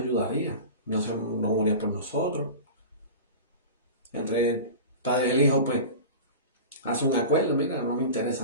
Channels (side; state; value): both; inverted; correlation -0.32